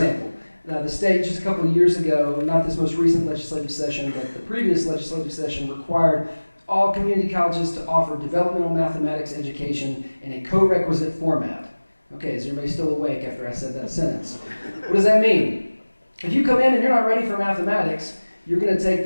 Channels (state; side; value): inverted; both; correlation -1.00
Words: The state just a couple of years ago, not this most recent legislative session, but the previous legislative session required all community colleges to offer developmental mathematics education in a co-requisite format. Okay, is everybody still awake after I said that sentence? What does that mean? If you come in and you're not ready for mathematics, you're going to take